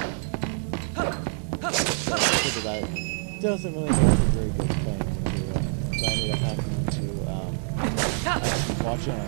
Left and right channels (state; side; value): silent; left; 59 dB below the other